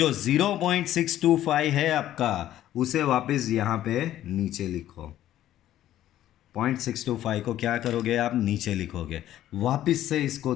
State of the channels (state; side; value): quieter; right; 12.8 dB